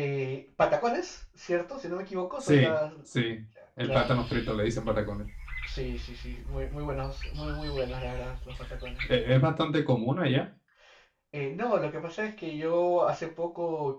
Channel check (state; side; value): identical; both; correlation 1.00